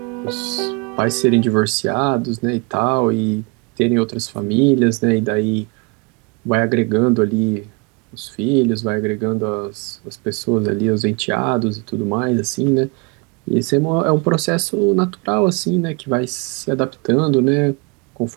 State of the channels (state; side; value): quieter; left; 31.3 dB